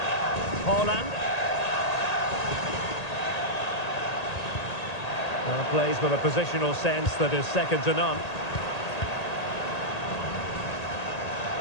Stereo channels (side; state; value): right; late; 1.8 ms